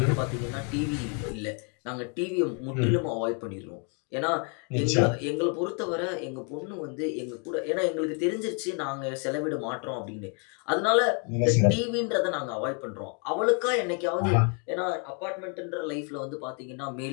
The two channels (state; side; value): quieter; right; 38.9 dB